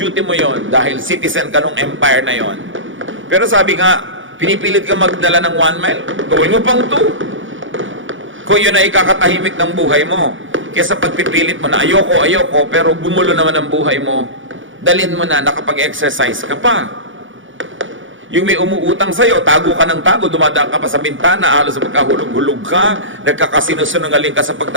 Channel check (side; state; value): left; late; 0.56 ms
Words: mo yon dahil citizen ka nung empire na yon. Pero sabi nga, pinipilit ka magdala ng 1 mile, gawin mo pang 2. Kung yun ay ikakatahimik ng buhay mo. Kesa pagpipilit mo na ayoko, pero gumulo naman ang buhay mo, dalhin mo na nakapag-exercise ka pa. Yung may umuutang sa'yo, tago ka ng tago, dumadaan ka pa sa bintana, halos magkahulog-hulog ka, nagkakasinungaling ka sa